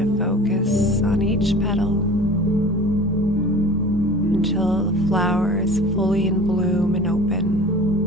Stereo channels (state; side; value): normal; both; correlation 0.41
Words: focus on each petal until the flower is fully in bloom and open.